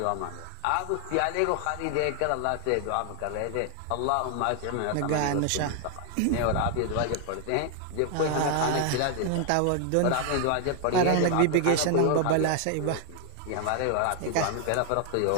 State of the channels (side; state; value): both; different; correlation 0.00